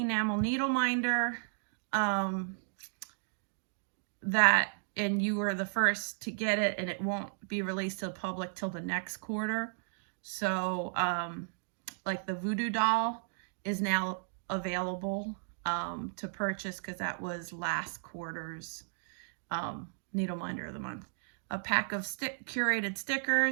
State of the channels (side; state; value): left; silent; digital silence